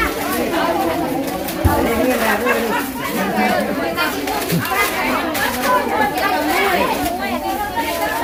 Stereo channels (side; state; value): both; identical; correlation 1.00